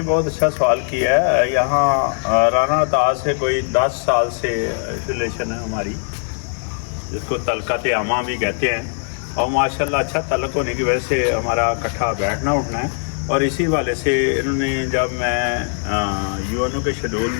बहुत अच्छा सवाल किया है। यहाँ राना ताज से कोई 10 साल से रिलेशन है हमारी, जिसको तलकत आमा भी कहते हैं, और माशाल्लाह अच्छा तलक होने की वजह से हमारा इकट्ठा बैठना उठना है। और इसी वाले से इन्होंने, जब मैं UNO के शेड्यूल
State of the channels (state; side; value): silent; right; 65 dB below the other